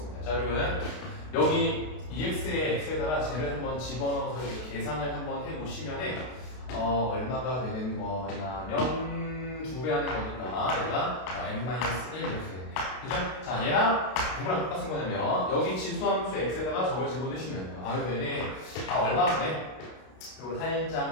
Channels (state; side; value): late; right; 32 ms